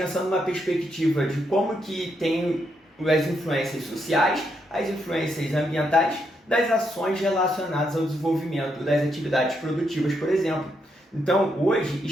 numa perspectiva de como que tem as influências sociais, as influências ambientais, das ações relacionadas ao desenvolvimento das atividades produtivas, por exemplo. Então, hoje,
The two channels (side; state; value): both; normal; correlation 0.79